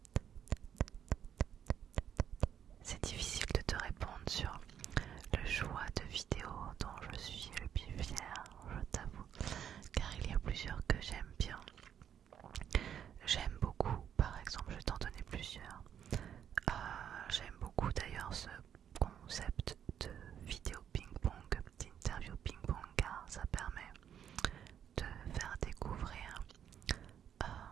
C'est difficile de te répondre sur le choix de vidéo dont je suis le plus fière, je t'avoue, car il y a plusieurs que j'aime bien. J'aime beaucoup, par exemple, je vais t'en donner plusieurs. J'aime beaucoup d'ailleurs ce concept de vidéo ping-pong, d'interview ping-pong, car ça permet de faire découvrir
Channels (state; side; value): quieter; left; 9.1 dB